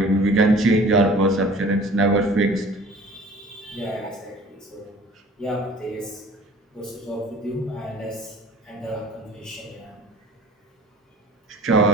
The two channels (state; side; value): normal; both; correlation 0.48